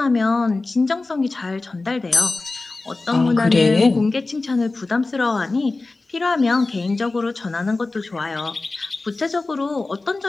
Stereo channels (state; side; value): quieter; right; 3.4 dB